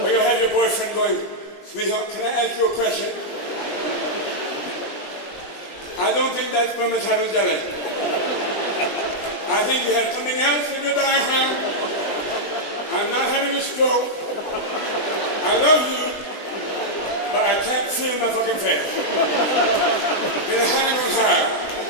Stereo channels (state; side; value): late; right; 20 ms